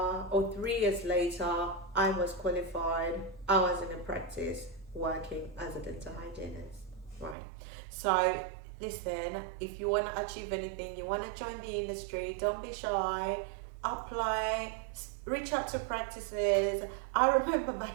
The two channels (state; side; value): drops out; left; at 7.4 s